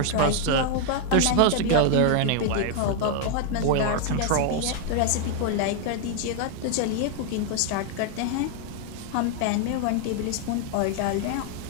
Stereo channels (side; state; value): both; different; correlation 0.00